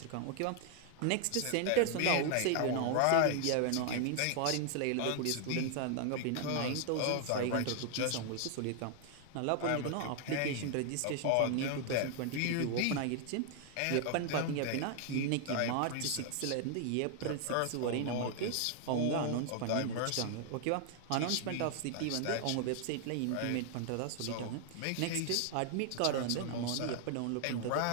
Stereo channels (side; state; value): both; different; correlation 0.00